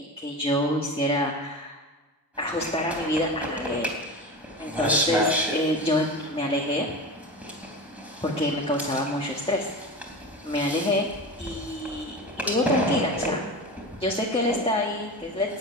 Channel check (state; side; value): normal; both; correlation 0.28